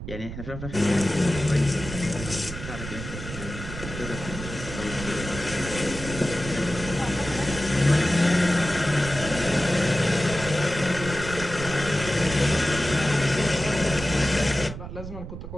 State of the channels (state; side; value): noise; right; rumble, 9 dB below the sound